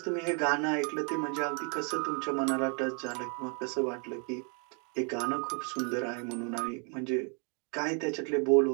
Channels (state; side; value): quieter; left; 37.8 dB